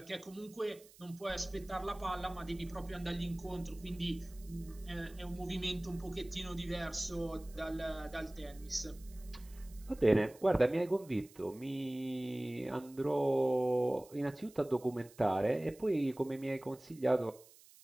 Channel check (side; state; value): right; noise; hiss, 23 dB below the sound